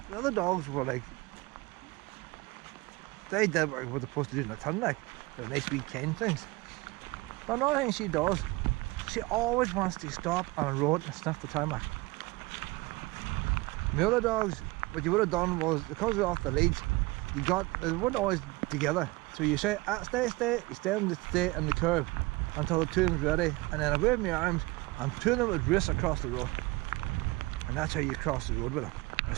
other dogs were like, they did what they're supposed to do in the ton, like they're nice wee kind things. But another thing she does, she always wants to stop on a road and sniff the tarmac. My other dogs, what you would have done was, because we're off the leads, they weren't always together. So you say, stay, you stay in the curve until the two of them's ready, and then I wave my arms and two of them would race across the road. And that's how you cross the road with them. I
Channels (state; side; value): quieter; left; 22.1 dB